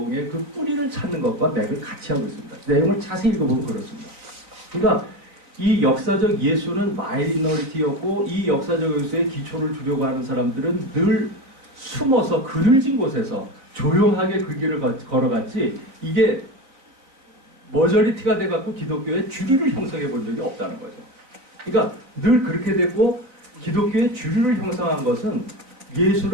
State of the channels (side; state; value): left; late; 3.9 ms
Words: 그 뿌리를 찾는 것과 맥을 같이 하고 있습니다. 내용을 자세히 읽어보면 그렇습니다. 그러니까 이 역사적 예수는 마이너리티였고 이 역사적 예수의 기초를 두려고 하는 사람들은 늘 숨어서 그늘진 곳에서 조용하게 그 길을 걸어갔지 이게 머저리티가 돼갖고 기독교의 주류를 형성해 본 적이 없다는 거죠. 그러니까 늘 그렇게 됐고 기독교의 주류를 형성한 것은